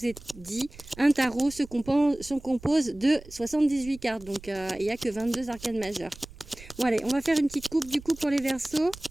ai dit, un tarot se compose de 78 cartes. Donc, il n'y a que 22 arcanes majeures. Bon, allez, on va faire une petite coupe du coup pour les Verseaux.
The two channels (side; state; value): right; noise; rumble, 19 dB below the sound